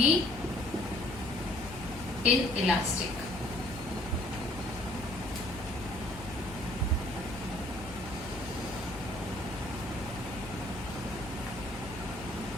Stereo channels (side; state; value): left; noise; hum, 13 dB below the sound